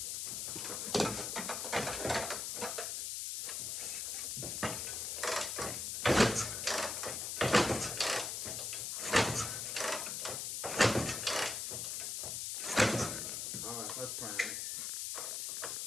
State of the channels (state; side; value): noise; left; hiss, 3 dB below the sound